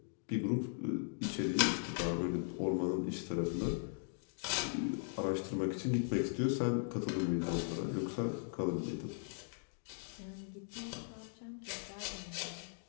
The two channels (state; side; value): silent; right; digital silence